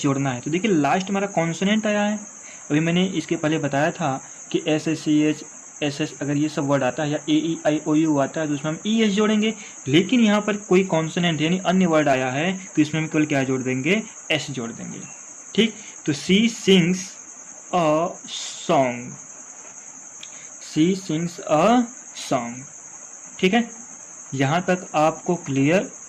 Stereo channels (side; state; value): both; identical; correlation 1.00